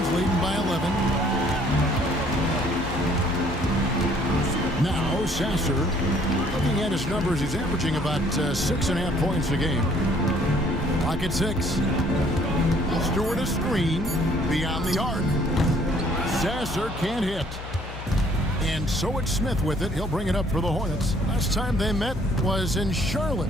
leading by 11. Now Sasser, looking at his numbers, he's averaging about 6.5 points a game. Pocket 6. Stewart a screen beyond the arc. Sasser can't hit. And so it's Smith with it. He'll bring it up for the Hornets. Last time they met was in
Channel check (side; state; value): left; noise; hum, 11 dB below the sound